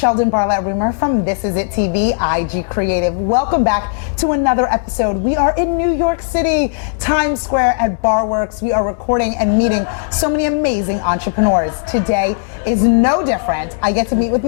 Barlatt Rumer from This Is It TV, IG Creative. Welcome back to another episode. We are in New York City, Times Square at Barworks. We are recording and meeting so many amazing entrepreneurs. Today is no different. I get to meet with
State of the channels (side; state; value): right; silent; digital silence